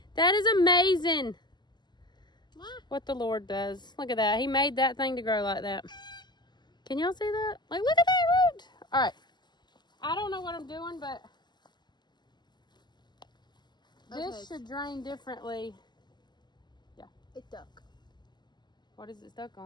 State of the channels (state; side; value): late; right; 0.21 ms